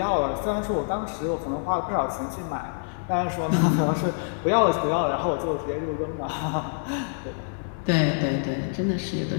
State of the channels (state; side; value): silent; right; 61 dB below the other